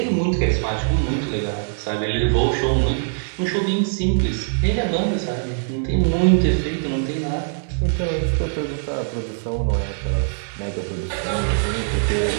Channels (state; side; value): silent; left; 64 dB below the other